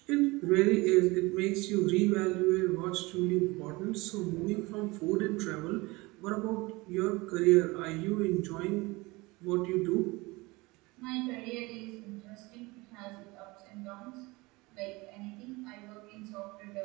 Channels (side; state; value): left; quieter; 23.3 dB